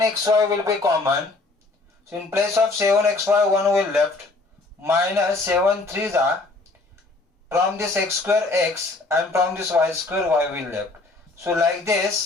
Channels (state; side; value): quieter; right; 3.3 dB